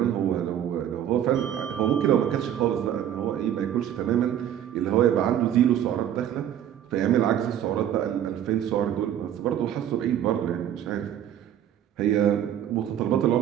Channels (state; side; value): quieter; left; 10.6 dB